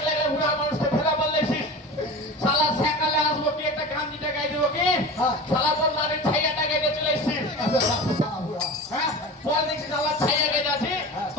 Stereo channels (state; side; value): normal; both; correlation 0.32